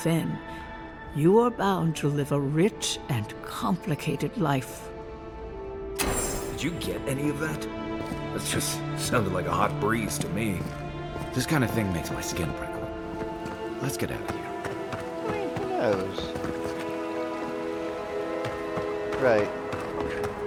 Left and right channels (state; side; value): identical; both; correlation 1.00